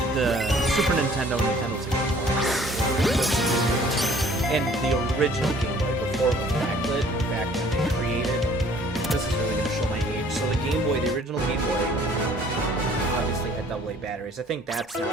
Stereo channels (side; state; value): both; normal; correlation 0.55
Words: the Super Nintendo, Nintendo 64, and the original Game Boy before it was backlit, back when they created, this is really going to show my age, so the Game Boy, the original Game Boy, obviously had AA batteries. I think that's not